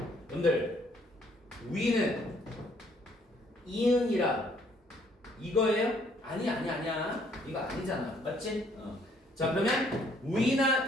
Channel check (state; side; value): normal; both; correlation 0.65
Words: 여러분들 위는 이응이라 이거예요? 아니야. 이거 아니잖아. 맞지? 자, 그러면